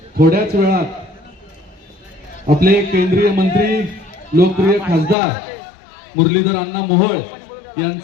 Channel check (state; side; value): drops out; right; at 5.2 s